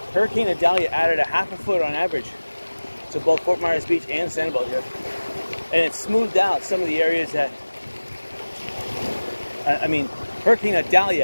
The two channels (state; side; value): inverted; both; correlation -1.00